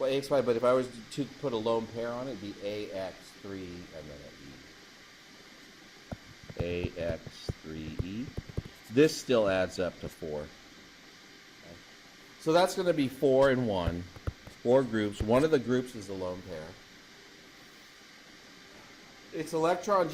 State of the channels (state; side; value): identical; both; correlation 1.00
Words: AX5, but if I was to put a lone pair on it, it'd be AX3 and then an E. AX3E. This still adds up to 4. Okay. So that's going to be 4 and 1. 4 groups. One of the groups is the lone pair. Its electron